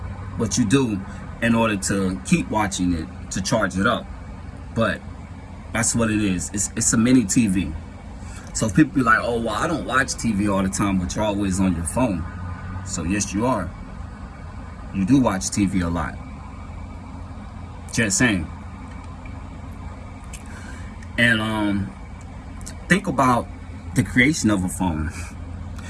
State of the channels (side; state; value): both; identical; correlation 1.00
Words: but you do in order to keep watching it, to charge it up. But that's what it is. It's a mini TV. So if people be like, oh, well, I don't watch TV all the time, but you're always on your phone. So yes, you are. You do watch TV a lot. Just saying. And think about the creation of a phone.